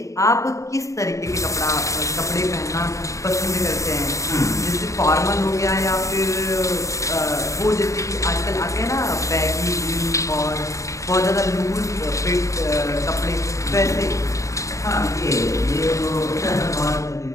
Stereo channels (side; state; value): right; late; 0.15 ms